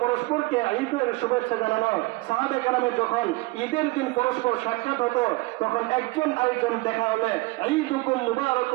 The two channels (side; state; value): left; quieter; 22.8 dB